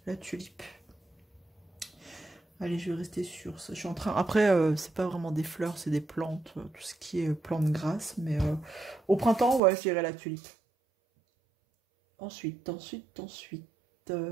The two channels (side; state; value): left; drops out; at 9.6 s